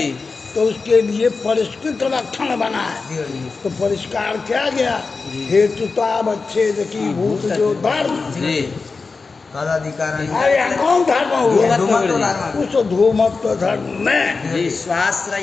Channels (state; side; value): quieter; right; 4.3 dB